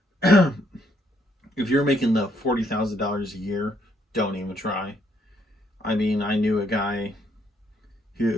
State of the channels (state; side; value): normal; both; correlation 0.71